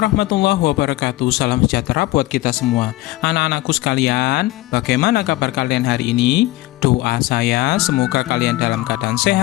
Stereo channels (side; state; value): right; quieter; 18.1 dB